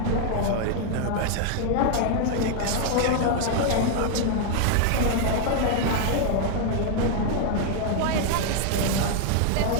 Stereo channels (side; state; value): both; different; correlation 0.00